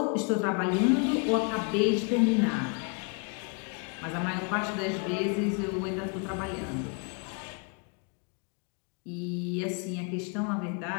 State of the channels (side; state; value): right; quieter; 35.0 dB